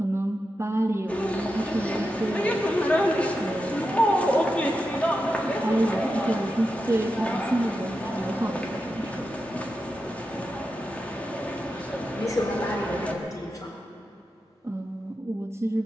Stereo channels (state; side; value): normal; both; correlation 0.89